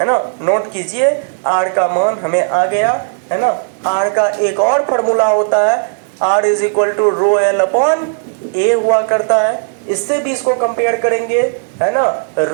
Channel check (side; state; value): left; silent; digital silence